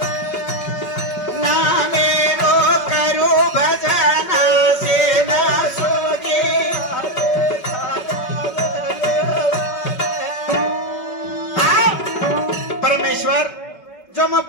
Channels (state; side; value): late; right; 5.3 ms